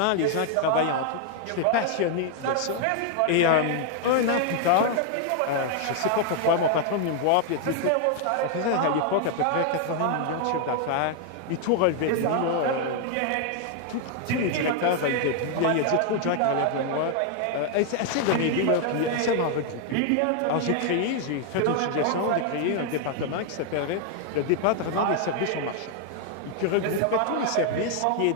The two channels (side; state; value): both; different; correlation 0.00